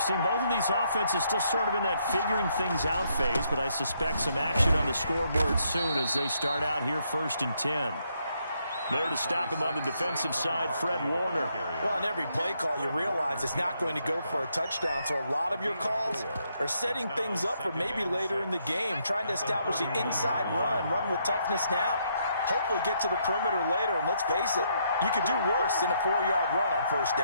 seen both of these offenses still sort of in that figuring things out phase, but I suspect some action on the scoreboard soon as they start out here 1st and 10. There to stop him on the defensive side, Fred Warner. Well, on every play call, you realize it's not going to go for a touchdown, so a lot of your calls are setting things up for maybe later in the game, trying to establish the inside run with toughness now, hopefully get to the perimeter later, and let's face it, you could do worse than a 4-yard run on 1st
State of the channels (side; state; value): both; inverted; correlation -0.75